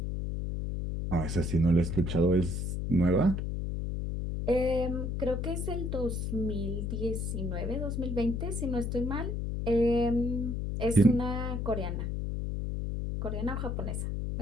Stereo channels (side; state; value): left; noise; hum, 2 dB below the sound